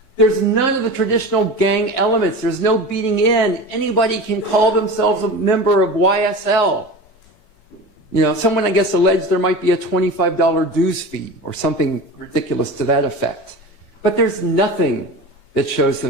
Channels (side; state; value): right; late; 4.5 ms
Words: there's none of the traditional gang elements. There's no beating in. Anybody can call themselves a member of YSL. You know, someone, I guess, alleged there might be a $25 dues fee or something ridiculous to that effect. But there's nothing that shows